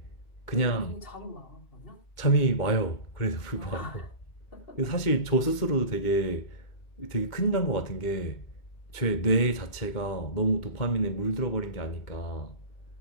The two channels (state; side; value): late; right; 2.2 ms